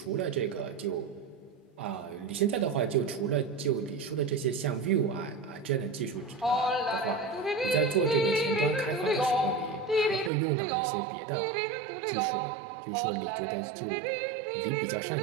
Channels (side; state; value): left; drops out; at 10.3 s